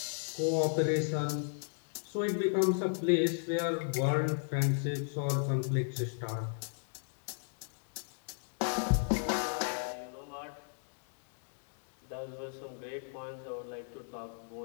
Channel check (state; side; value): silent; right; digital silence